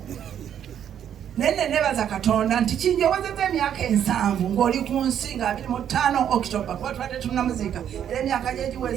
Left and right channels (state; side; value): quieter; left; 9.5 dB